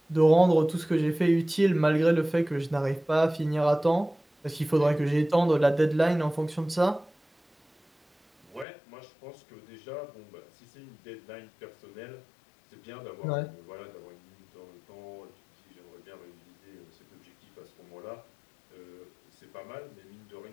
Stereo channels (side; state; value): right; drops out; at 8.7 s